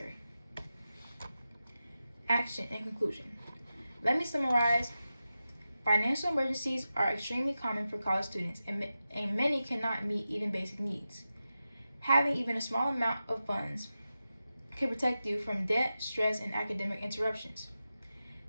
Action and conclusion. Let me summarize. Financial emergencies are extremely common for college students, and many cannot meet even basic needs. Having even a small amount of funds can protect you from debt, stress, and academic interruptions.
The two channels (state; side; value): inverted; both; correlation -0.92